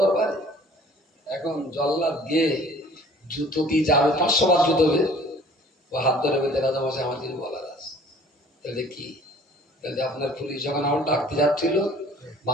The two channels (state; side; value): normal; both; correlation 0.51